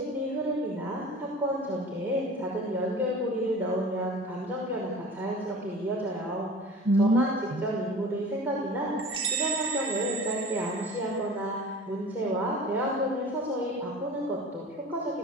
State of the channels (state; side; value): normal; both; correlation 0.40